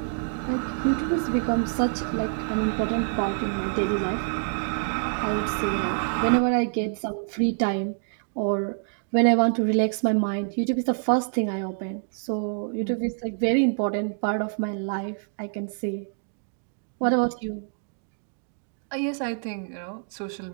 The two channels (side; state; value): left; silent; digital silence